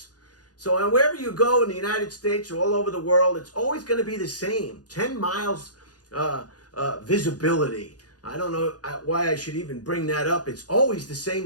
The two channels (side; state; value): right; late; 0.68 ms